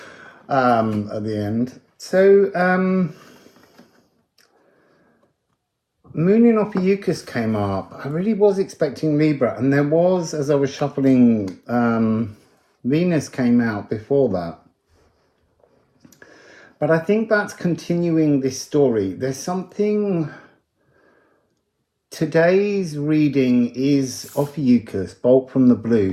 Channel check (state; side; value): identical; both; correlation 1.00